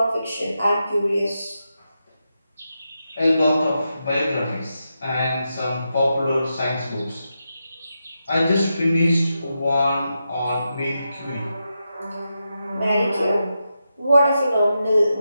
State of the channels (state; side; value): inverted; both; correlation -0.87